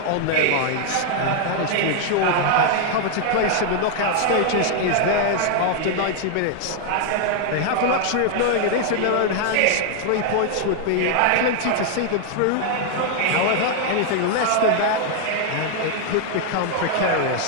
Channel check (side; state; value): both; different; correlation 0.00